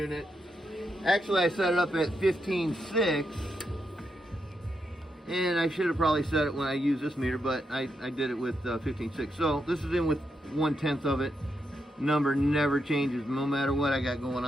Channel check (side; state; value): both; normal; correlation 0.83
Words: actually I set it up at 15.6, and I should have probably set it when I used this meter, but I did it with 15.6. So this is in with 1/10 of it. Number never changes no matter what I got going